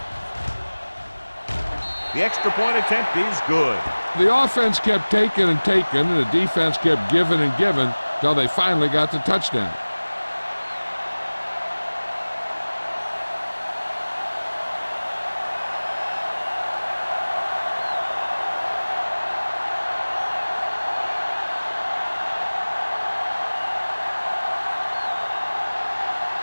The extra point attempt is good. The offense kept taking and taking, and the defense kept giving and giving until they finally got the touchdown.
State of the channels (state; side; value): inverted; both; correlation -1.00